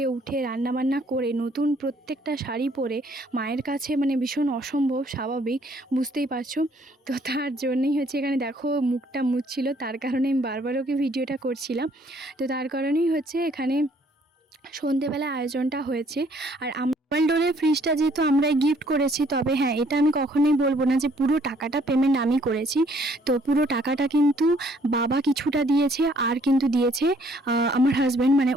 উঠে রান্নাবান্না করে নতুন প্রত্যেকটা শাড়ি পরে মায়ের কাছে মানে ভীষণ অসম্ভব, স্বাভাবিক, বুঝতেই পারছো। তো তার জন্যই হচ্ছে এখানে দেখো মুখটা মুছছিল, তার কারণে আমি বারবার ওকে ভিডিওটা করছিলাম। তো তার কারণেই হচ্ছে এখানে সন্ধেবেলা আয়োজনটা হয়েছে। আর ডোরের ফ্রিজটা যেহেতু আমরাই গিফট করেছি, তবে হ্যাঁ এটা আমি কখনোই বলবো না যে পুরো টাকাটা পেমেন্ট আমি করেছি। তো পুরো টাকাটা কিন্তু বাবা কিছুটা দিয়েছে, আর কিন্তু দিয়েছে আমার হাজব্যান্ড, মানে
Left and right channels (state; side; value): normal; both; correlation 0.63